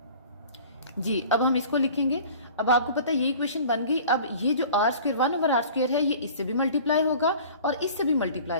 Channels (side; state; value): both; inverted; correlation -0.45